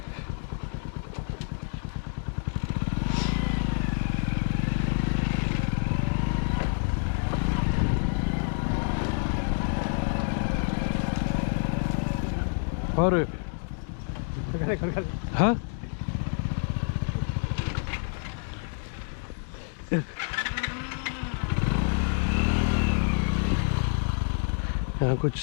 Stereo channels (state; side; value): silent; right; 59 dB below the other